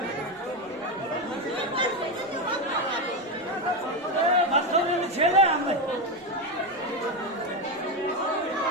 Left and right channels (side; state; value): both; normal; correlation 0.11